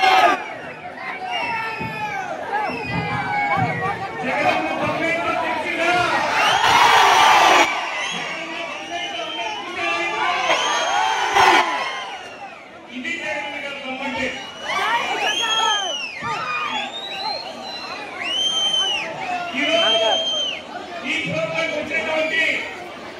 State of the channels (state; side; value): identical; both; correlation 1.00